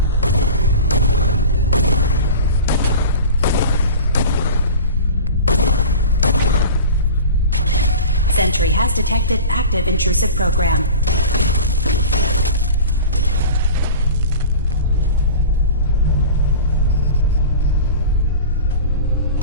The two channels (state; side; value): inverted; both; correlation -0.35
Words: Sentry has detected active intrusive program.